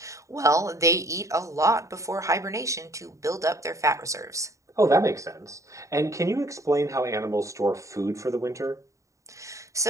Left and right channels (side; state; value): left; late; 0.15 ms